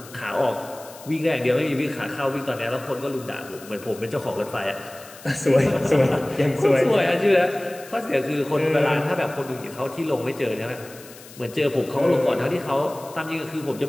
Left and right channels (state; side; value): noise; left; hiss, 19 dB below the sound